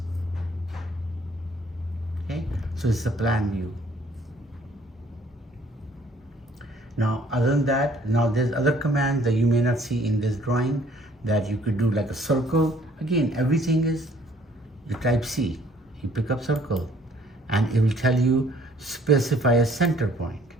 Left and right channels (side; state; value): both; normal; correlation 0.59